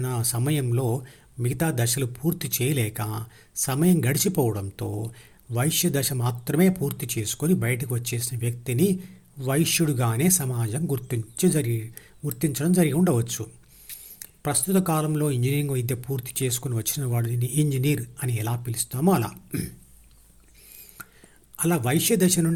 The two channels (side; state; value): both; identical; correlation 1.00